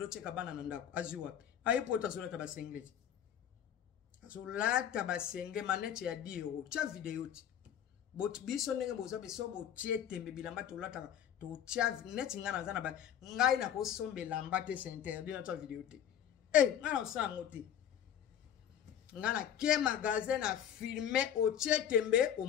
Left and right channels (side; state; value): right; quieter; 9.6 dB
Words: kabana na ndako aziwa ayipota zola tabasengezi azolata basenge manete ya 10 euros cha video ti bot biso ndenge boza beso bo tietembe bilamba to lata to cha net ngana zana ba ngai na ko sombe lamba te c'est interdit na ta video ti ngana osango ti ngana ke magasin na filmer o tietembe o